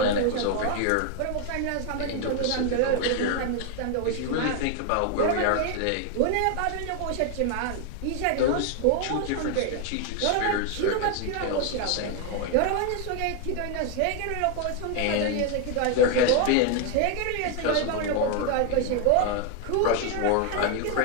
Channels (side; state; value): both; different; correlation 0.01